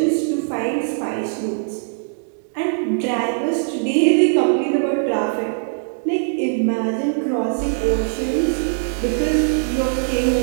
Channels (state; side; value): silent; left; digital silence